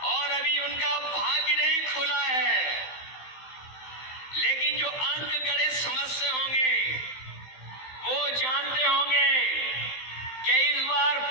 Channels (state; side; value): late; right; 15 ms